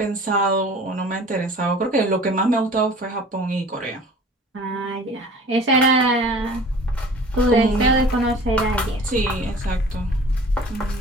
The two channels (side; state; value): both; normal; correlation 0.45